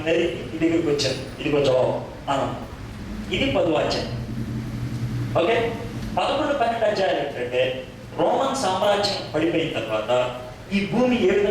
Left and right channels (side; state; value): both; identical; correlation 1.00